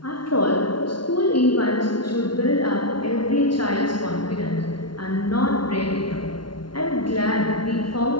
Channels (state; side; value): late; right; 0.72 ms